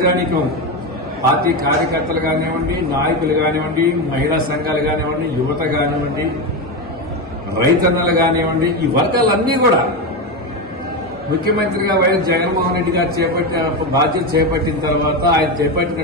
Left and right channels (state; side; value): normal; both; correlation 0.14